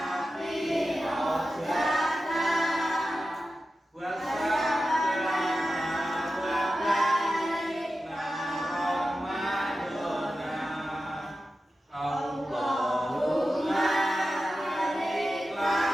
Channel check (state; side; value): normal; both; correlation 0.92